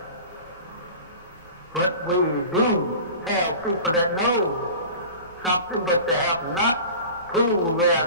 But we do have people that know something, but they have not proved their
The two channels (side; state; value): both; inverted; correlation -0.37